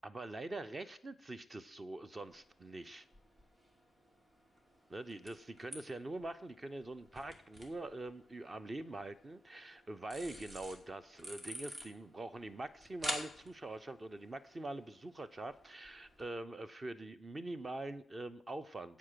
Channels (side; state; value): both; normal; correlation 0.91